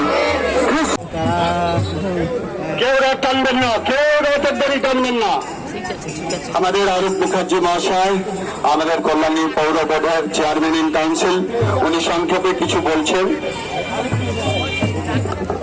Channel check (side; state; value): both; identical; correlation 1.00